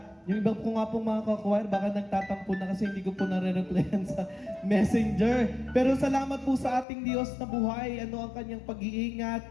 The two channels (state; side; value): drops out; right; at 6.9 s